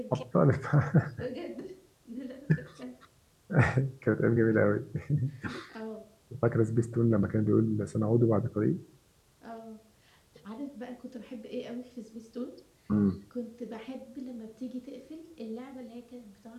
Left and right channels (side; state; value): both; identical; correlation 1.00